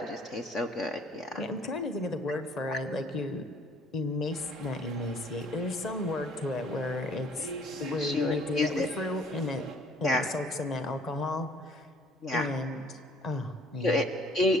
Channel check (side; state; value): both; normal; correlation 0.57